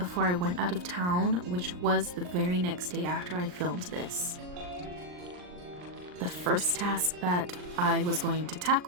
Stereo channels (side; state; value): left; late; 39 ms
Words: I went out of town, which was the very next day after I filmed this. The first task that I was going to